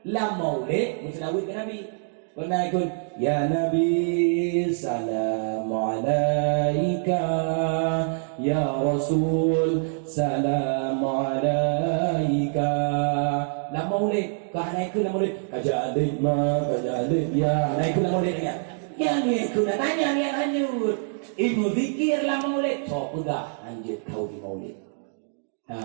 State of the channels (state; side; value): silent; left; digital silence